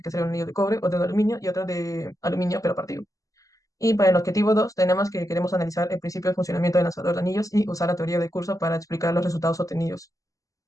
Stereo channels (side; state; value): right; late; 0.16 ms